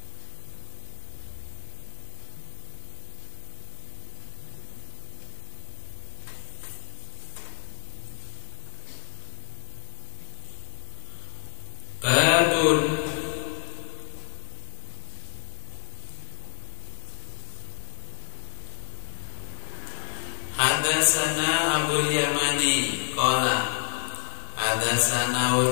hadasana Abul Yamani qala hadasana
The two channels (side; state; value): right; silent; digital silence